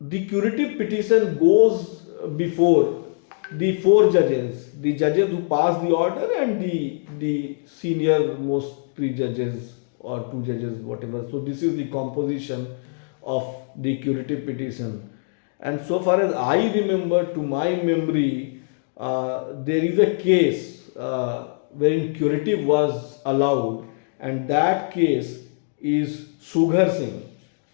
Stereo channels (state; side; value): silent; right; digital silence